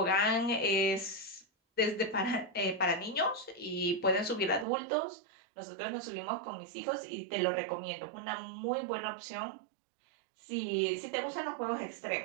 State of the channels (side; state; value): left; drops out; at 4.7 s